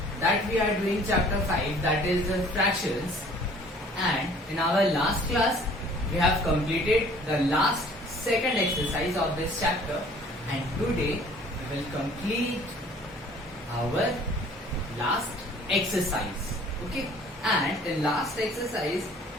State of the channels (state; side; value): normal; both; correlation 0.53